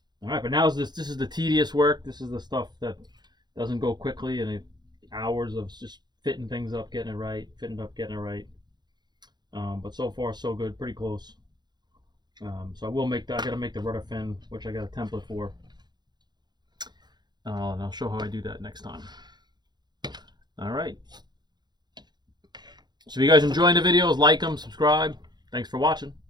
All right, but now this is the tedious work. This is the stuff that doesn't go quickly, and hours of just fitting things up, getting it right, fitting it up, getting it right. But so far, so good. Pretty close. So I will make that. I gotta make the rudder fin, which I got a template for. And I'll show how I do that next time. All right. So if you guys enjoying the videos, like them, subscribe. Thanks for watching.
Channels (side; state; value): left; late; 0.21 ms